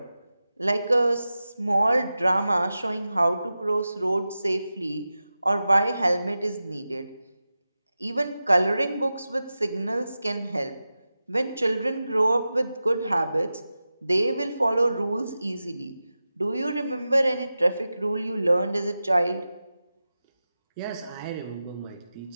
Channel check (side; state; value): both; inverted; correlation -0.93